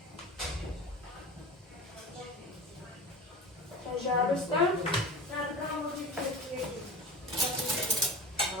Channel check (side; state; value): both; normal; correlation 0.33